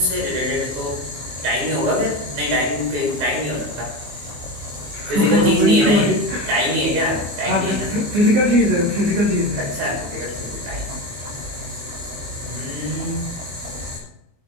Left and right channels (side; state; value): left; late; 25 ms